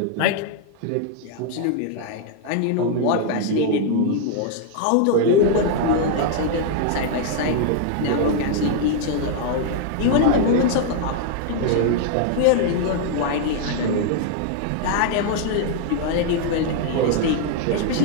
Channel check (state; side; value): different; both; correlation 0.00